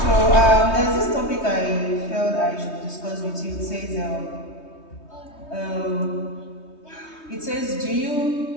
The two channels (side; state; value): right; late; 3.2 ms